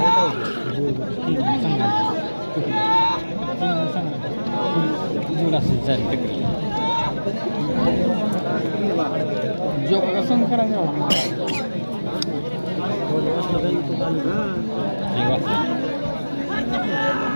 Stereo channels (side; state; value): both; inverted; correlation -1.00